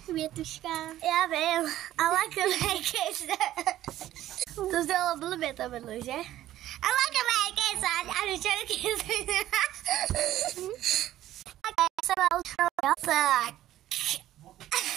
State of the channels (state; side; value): quieter; left; 13.6 dB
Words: Já vím, ale Merry kiss. To zdělalo blbě to bylo, že? Ale Merry kiss a Richard kiss. Tak.